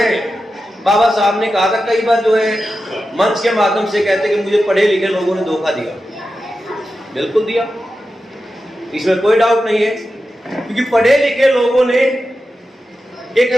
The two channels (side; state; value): both; normal; correlation 0.91